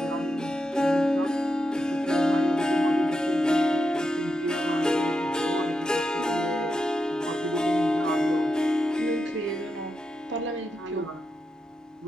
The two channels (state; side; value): normal; both; correlation 0.86